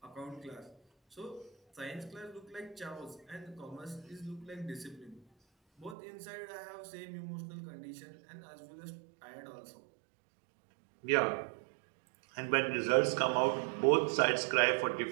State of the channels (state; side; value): drops out; left; at 6.0 s